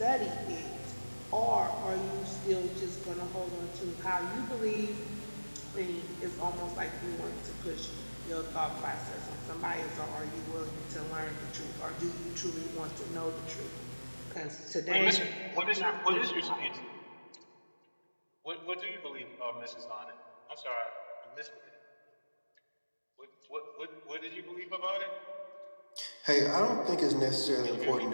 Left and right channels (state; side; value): inverted; both; correlation -1.00